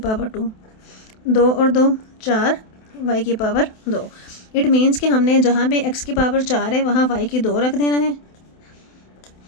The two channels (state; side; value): late; right; 28 ms